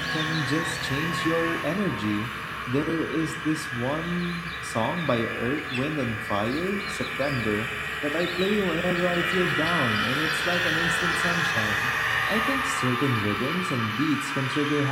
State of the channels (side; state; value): both; identical; correlation 1.00